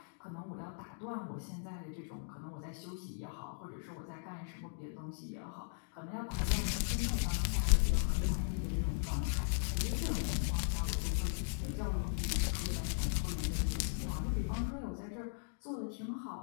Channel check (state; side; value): silent; right; digital silence